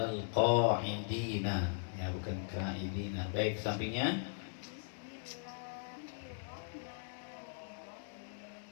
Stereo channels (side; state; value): right; silent; digital silence